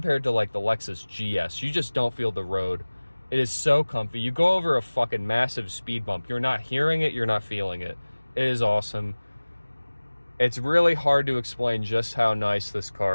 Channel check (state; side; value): inverted; both; correlation -1.00